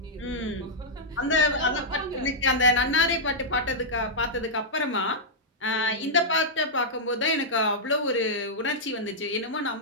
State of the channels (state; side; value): normal; both; correlation -0.08